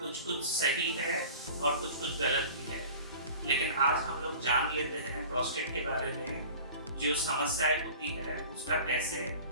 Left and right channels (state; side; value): inverted; both; correlation -0.41